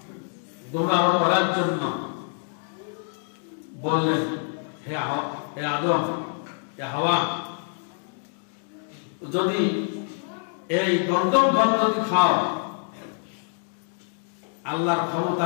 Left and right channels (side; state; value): right; silent; 55 dB below the other